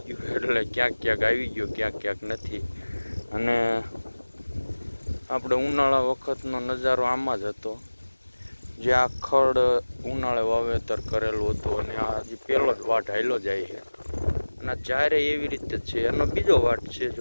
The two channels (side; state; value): both; inverted; correlation -1.00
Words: ગયું. એટલે ક્યાંક આવી ગયો, ક્યાંક નથી. અને આપણે ઉનાળા વખતનો નજારો આમાં જ હતો, જે આ ખડ ઉનાળે વાવેતર કરેલું હતું. અને આ હજી પહેલો જ વાટ હાલ્યો જાય છે, અને જ્યારે એવી રીતે છે. એનો બીજો વાટ છે